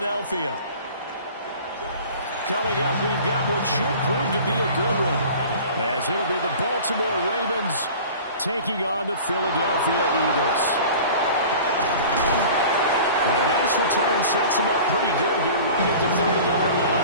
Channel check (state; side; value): inverted; both; correlation -0.41